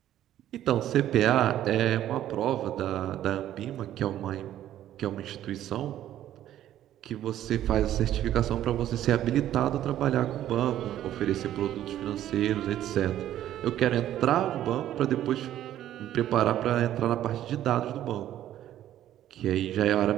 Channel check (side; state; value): left; quieter; 12.2 dB